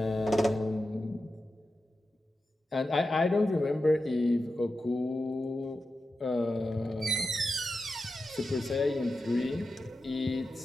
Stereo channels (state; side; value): normal; both; correlation 0.91